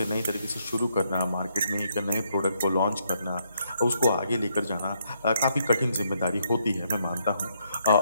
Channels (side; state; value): both; inverted; correlation -0.75